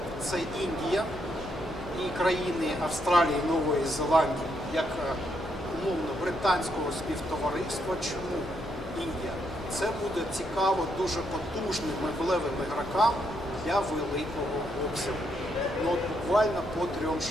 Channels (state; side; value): noise; left; hum, 14 dB below the sound